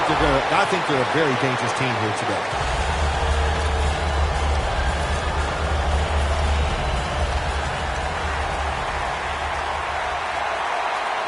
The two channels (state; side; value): identical; both; correlation 1.00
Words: they're a very dangerous team here today.